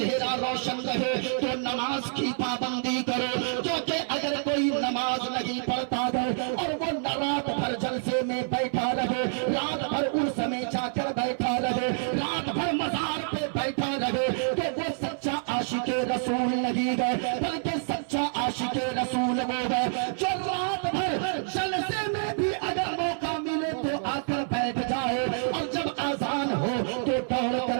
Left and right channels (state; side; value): silent; left; 56 dB below the other